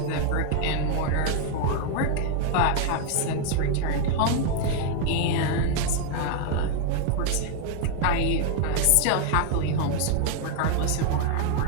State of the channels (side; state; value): both; different; correlation 0.00